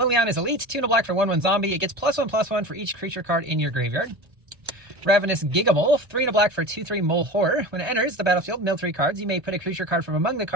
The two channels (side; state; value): left; late; 1.3 ms